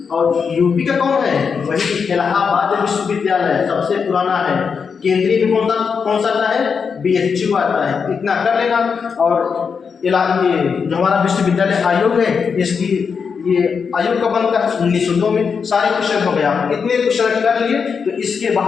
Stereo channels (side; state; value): right; quieter; 5.9 dB